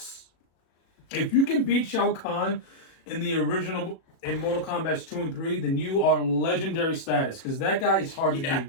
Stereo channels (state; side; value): late; right; 37 ms